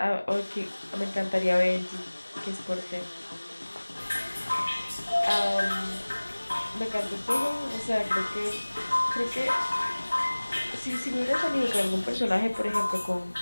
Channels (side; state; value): both; inverted; correlation -1.00